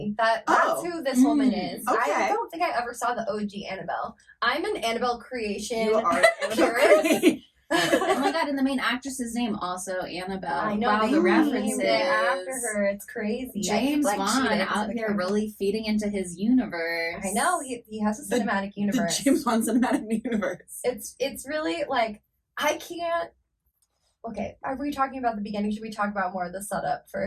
that's who this woman is. Okay. I don't think I ever saw the OG Annabelle. I'm an Annabelle creation. You are purist. Oh my god, and the main actress's name also Annabelle. I know. Wow, they the references. named it after her. It's crazy. James I keep, Wan cheating out into the here camera. really feeding into his universe. I know he has a cinematic The universe. James Wan cinematic universe. It's really like I can't. Okay, are we talking about the beginning? Should we talk about more of the setup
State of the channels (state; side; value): identical; both; correlation 1.00